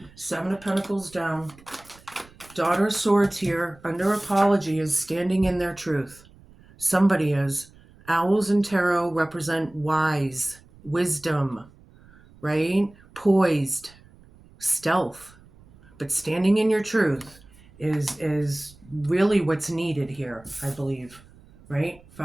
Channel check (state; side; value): noise; right; rumble, 25 dB below the sound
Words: 7 of Pentacles down. Daughter of Swords here, under apology, is standing in their truth. Somebody is. Owls and tarot represent wise, wisdom, right? Poised, stealth, but standing in your truth is really what's needed here, I believe. Right?